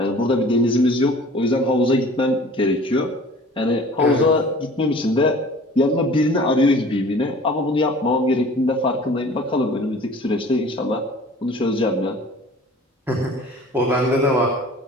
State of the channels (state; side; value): normal; both; correlation 0.46